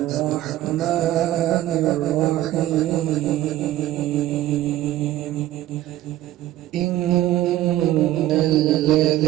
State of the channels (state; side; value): quieter; left; 14.1 dB